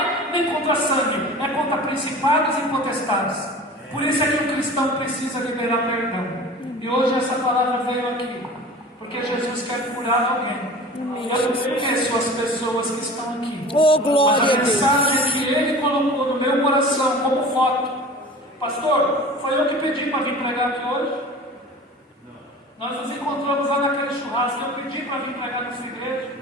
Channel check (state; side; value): normal; both; correlation 0.39